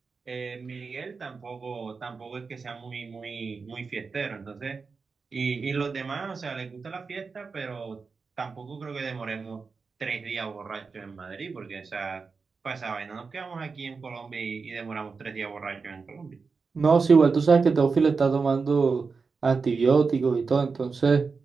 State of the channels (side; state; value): left; quieter; 4.8 dB